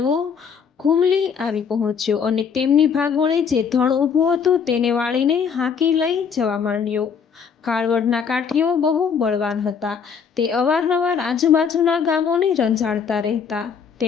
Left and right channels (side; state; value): right; quieter; 6.5 dB